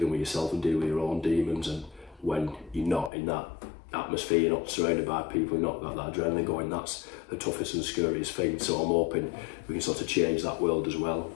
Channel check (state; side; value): drops out; right; at 3.1 s